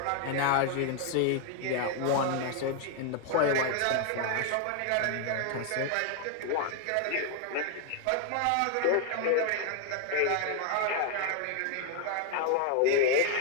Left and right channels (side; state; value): both; different; correlation 0.01